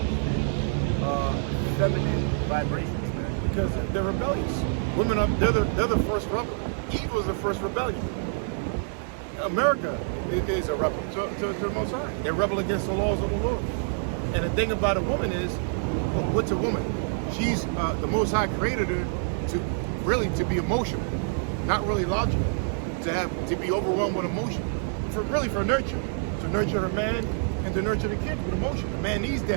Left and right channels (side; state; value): left; silent; digital silence